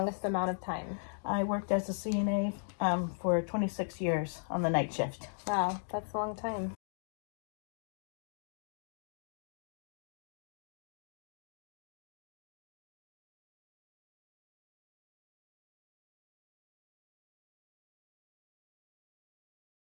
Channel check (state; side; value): silent; right; digital silence